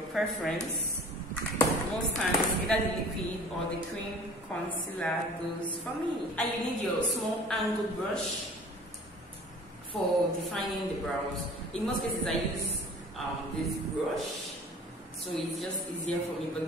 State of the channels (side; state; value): both; normal; correlation 0.46